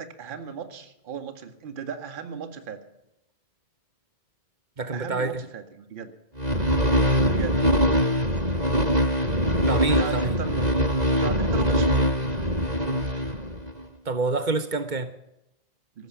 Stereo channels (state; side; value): late; left; 2.2 ms